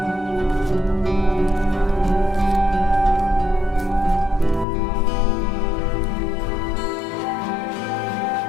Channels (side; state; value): right; drops out; at 4.7 s